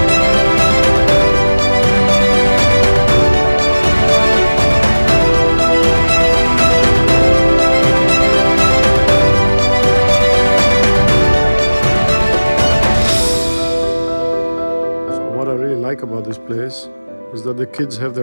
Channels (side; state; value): both; inverted; correlation -1.00